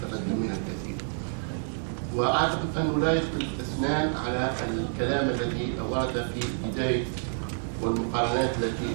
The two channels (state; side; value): silent; left; digital silence